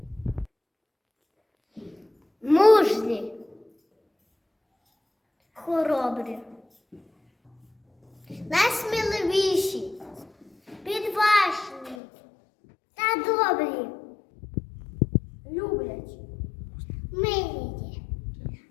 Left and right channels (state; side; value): drops out; right; at 12.0 s